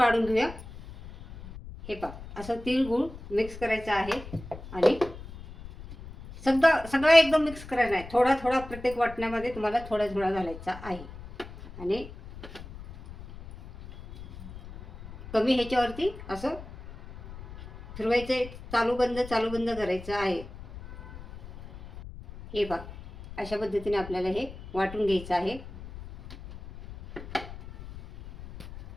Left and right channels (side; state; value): left; noise; rumble, 15 dB below the sound